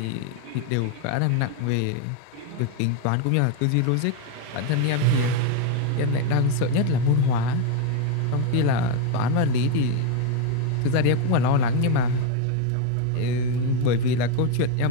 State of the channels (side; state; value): both; different; correlation 0.02